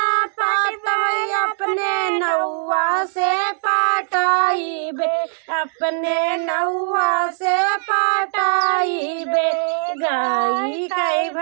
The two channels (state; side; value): silent; left; digital silence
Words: पाटवई अपने नौआ से पाटाई बे, अपने नौआ से पाटाई बे। गाई कई